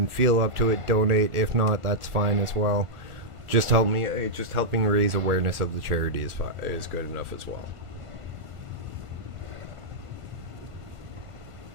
feel up to it, donate. If not, that's fine as well. Just helping raise awareness of the charity is good enough as well.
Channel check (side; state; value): left; late; 1.4 ms